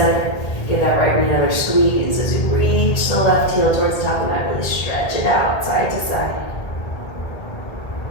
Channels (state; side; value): late; right; 1.5 ms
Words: Give that right knee another squeeze as you reach the left heel towards the top of the mat. Really stretch it out side to side.